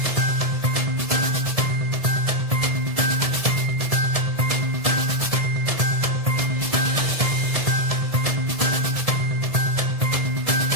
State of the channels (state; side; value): late; left; 1.7 ms